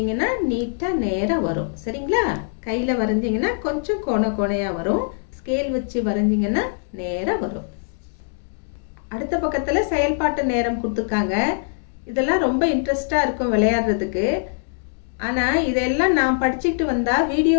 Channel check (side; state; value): right; silent; digital silence